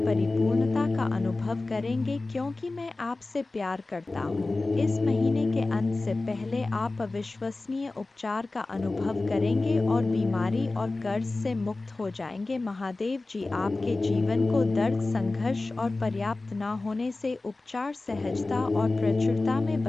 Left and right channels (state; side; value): quieter; right; 3.2 dB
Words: का अनुभव करेंगे, क्योंकि मैं आपसे प्यार करता हूँ। इस महीने के अंत से पहले आप अविश्वसनीय उपचार का अनुभव करेंगे और बीमारी और कर्ज से मुक्त हो जाएंगे। महादेव जी आपके जीवन को दर्द, संघर्ष और पर्याप्त न होने से उपचार, सहजता और प्रचुरता में